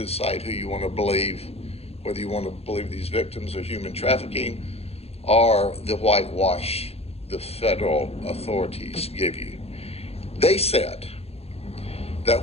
who you want to believe, whether you want to believe these victims of human trafficking or the whitewash the federal authorities give you. They said that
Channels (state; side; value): late; right; 0.29 ms